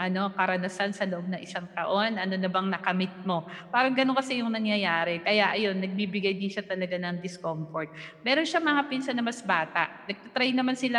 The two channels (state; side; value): identical; both; correlation 1.00